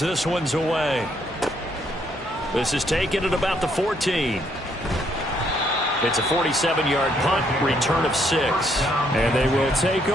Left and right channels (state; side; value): normal; both; correlation 0.71